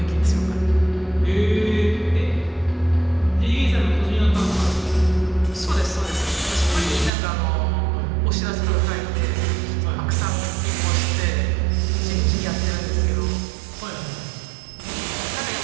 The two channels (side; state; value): left; drops out; at 7.1 s